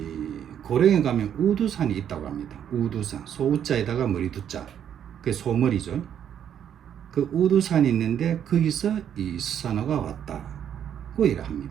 고령에 가면 우두산이 있다고 합니다. 우두산, 소우자에다가 머리두자, 그게 소머리죠. 그 우두산이 있는데 거기서 이 스사노가 왔다고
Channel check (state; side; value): quieter; left; 9.3 dB